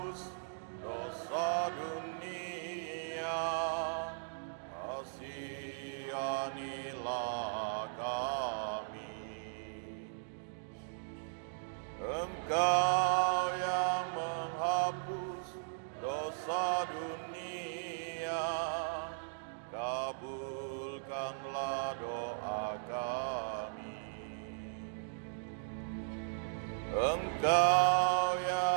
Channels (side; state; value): left; silent; digital silence